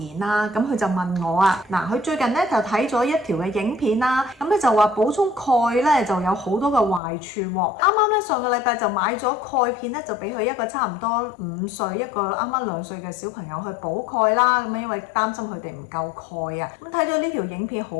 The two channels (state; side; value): drops out; right; at 7.0 s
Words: 啦，咁佢就問我啊，嗱，佢最近咧就睇咗一條嘅影片啦，咁咧就話補充鈣咧就有好多嘅壞處喎。啱啱咧上個禮拜就買咗鈣片咧，就俾佢一個差唔多5歲，一個啱啱2歲嘅小朋友去補鈣啦，咁因為擔心佢哋唔夠鈣啊。咁睇咗呢條影片好